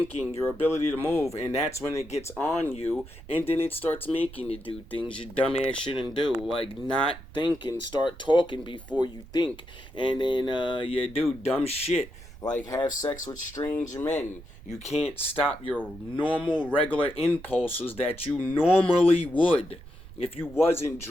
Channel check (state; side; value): noise; right; rumble, 18 dB below the sound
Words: your ability to move, and that's when it gets on you, and then it starts making you do things you dumbass shouldn't do, like not think and start talking before you think, and then you do dumb shit, like have sex with strange men. You can't stop your normal, regular impulses that you normally would. If you wasn't